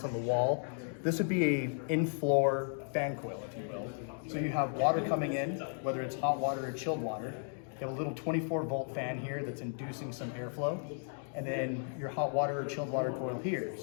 on the wall, this would be a in-floor fan coil, if you will. So you have water coming in, whether it's hot water or chilled water. You have a little 24-volt fan here that's inducing some airflow. And then your hot water or chilled water coil here.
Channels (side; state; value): right; silent; 55 dB below the other